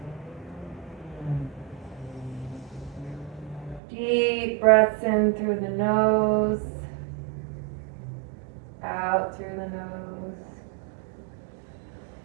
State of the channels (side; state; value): left; drops out; at 3.8 s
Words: Deep breaths in through the nose, out through the nose.